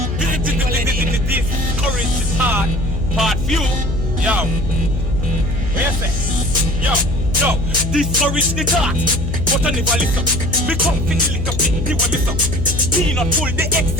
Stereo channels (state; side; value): noise; left; hum, 2 dB below the sound